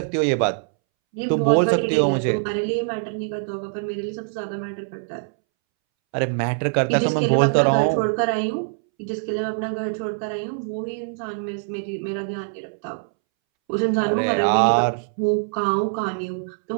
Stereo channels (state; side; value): silent; left; 63 dB below the other